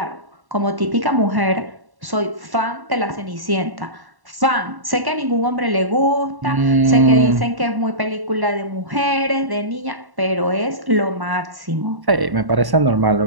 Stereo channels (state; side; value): late; left; 1.1 ms